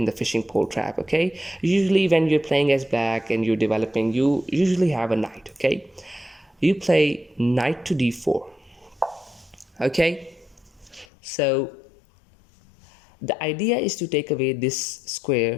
the fishing pole trap, okay? Usually when you're playing as black and you're developing, you usually have a knight, okay? You play knight to d4, okay? So the idea is to take away this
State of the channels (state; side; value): drops out; right; at 11.1 s